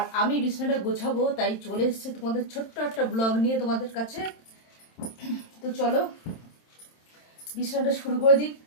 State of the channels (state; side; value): late; right; 27 ms